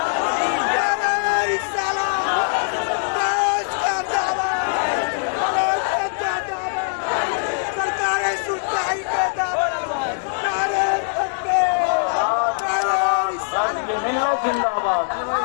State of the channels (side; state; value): right; silent; digital silence